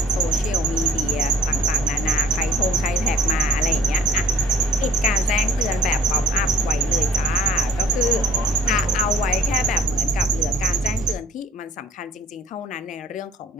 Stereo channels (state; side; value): normal; both; correlation 0.53